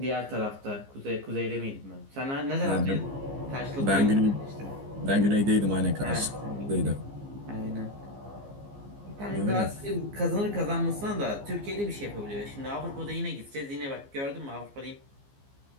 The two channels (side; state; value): left; late; 15 ms